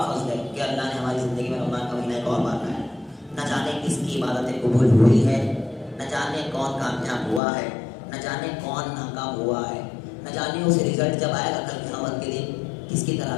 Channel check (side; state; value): right; drops out; at 7.4 s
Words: فضل ہے کہ اللہ نے ہماری زندگی میں رمضان کا مہینہ ایک اور بار لایا. نہ جانے کس کی عبادتیں قبول ہوئی ہے, نہ جانے کون کامیاب ہوا ہے, نہ جانے کون ناکام ہوا ہے, نہ جانے اس رزلٹ جب آئے گا کل قیامت کے دن کس کی